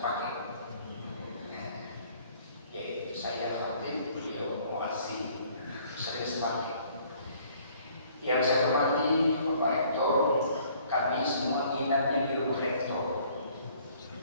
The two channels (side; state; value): both; inverted; correlation -0.59